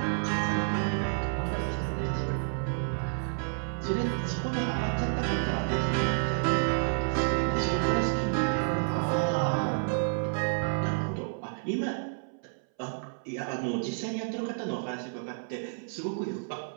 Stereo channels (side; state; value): left; silent; 58 dB below the other